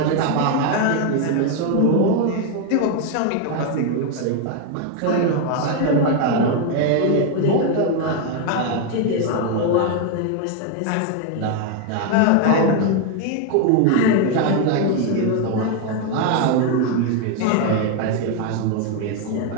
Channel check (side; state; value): both; different; correlation 0.01